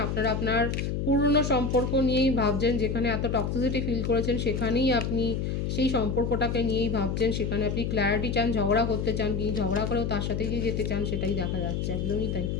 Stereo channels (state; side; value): noise; left; hum, 1 dB below the sound